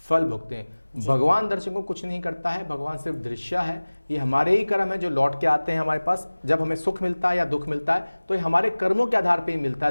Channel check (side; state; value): both; inverted; correlation -1.00